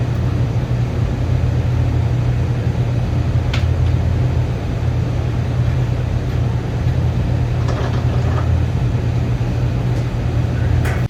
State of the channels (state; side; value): identical; both; correlation 1.00